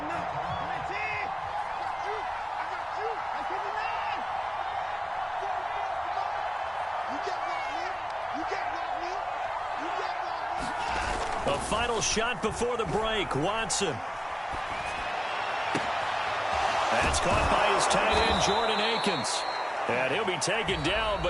A final shot before the break. Watson. That's caught by his tight end, Jordan Akins. And he'll be taken down,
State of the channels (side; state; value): both; identical; correlation 1.00